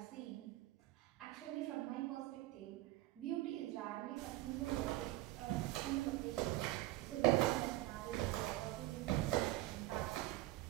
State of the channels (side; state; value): left; quieter; 16.9 dB